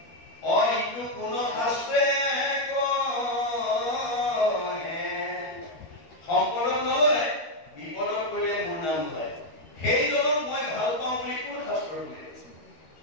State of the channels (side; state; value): right; late; 13 ms